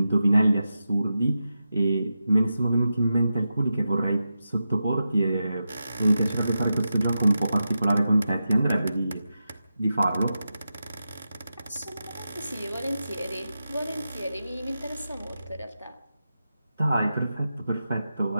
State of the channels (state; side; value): inverted; both; correlation -0.90